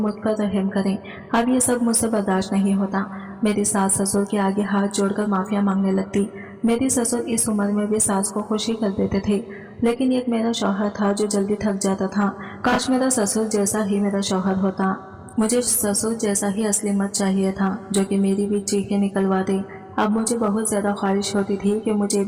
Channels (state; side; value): identical; both; correlation 1.00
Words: पर रहम करें, अब ये सब मुझसे बर्दाश्त नहीं होता। मेरी सास ससुर के आगे हाथ जोड़कर माफिया मांगने लगती। मेरी ससुर इस उम्र में भी सास को खुशी कर देते थे, लेकिन एक मेरा शौहर था जो जल्दी थक जाता था। काश मेरा ससुर जैसा ही मेरा शौहर होता। मुझे ससुर जैसा ही असली मर्द चाहिए था जो कि मेरी भी चीखें निकलवा दे। अब मुझे बहुत ज्यादा ख्वाहिश होती थी कि मुझे